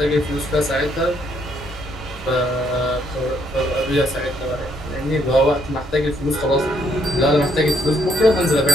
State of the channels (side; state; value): both; normal; correlation 0.70